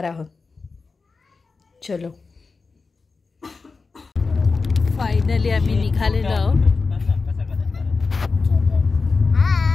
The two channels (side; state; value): right; quieter; 4.3 dB